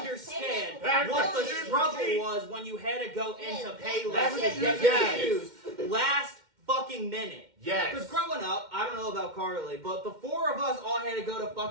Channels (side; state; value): left; late; 2.1 ms